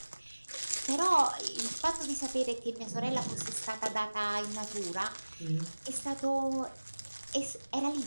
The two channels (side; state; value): both; inverted; correlation -1.00